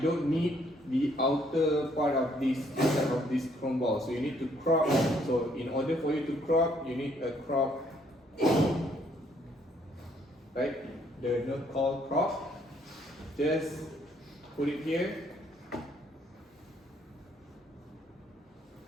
don't need the outer part of this inside of this chrome ball. So you need to crop. So in order for you to crop, you need a crop, right? The note called crop. Just put it here.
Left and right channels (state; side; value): normal; both; correlation 0.67